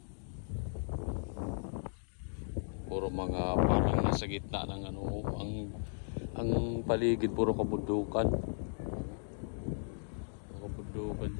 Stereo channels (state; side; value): silent; right; digital silence